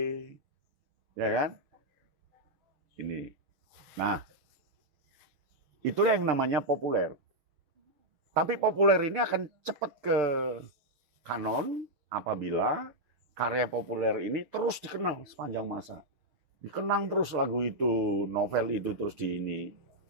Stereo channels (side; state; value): left; late; 6.3 ms